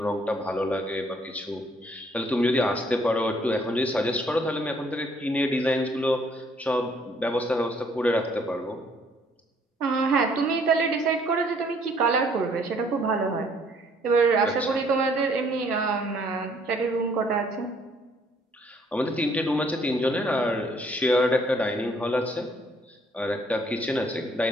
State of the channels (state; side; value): normal; both; correlation 0.63